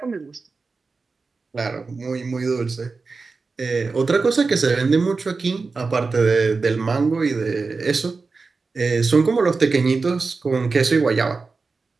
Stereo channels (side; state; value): left; quieter; 4.2 dB